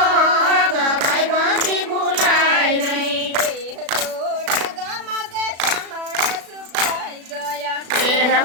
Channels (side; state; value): left; late; 36 ms